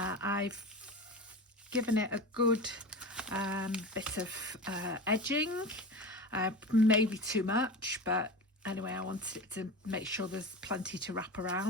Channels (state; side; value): normal; both; correlation 0.29